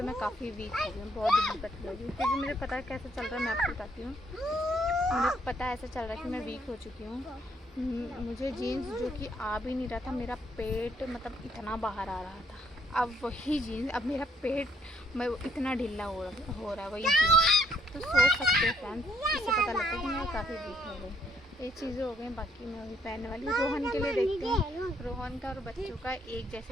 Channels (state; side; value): normal; both; correlation 0.69